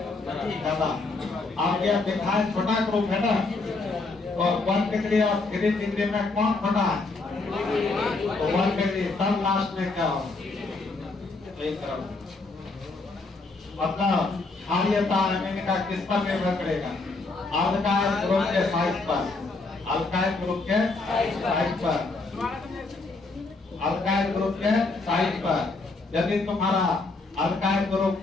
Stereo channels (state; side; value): quieter; right; 3.6 dB